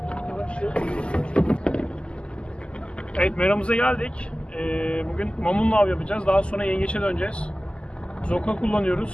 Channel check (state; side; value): late; right; 0.051 ms